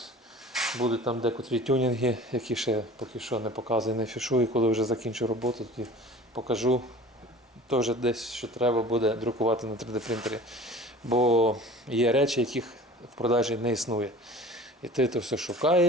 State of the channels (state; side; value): normal; both; correlation 0.42